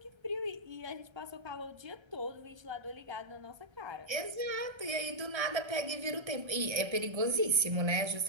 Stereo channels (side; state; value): left; late; 1.3 ms